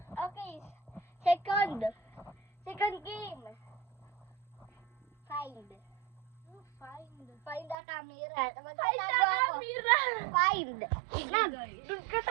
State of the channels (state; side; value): drops out; left; at 7.8 s